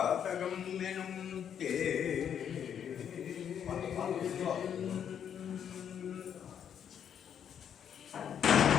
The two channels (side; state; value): right; quieter; 8.6 dB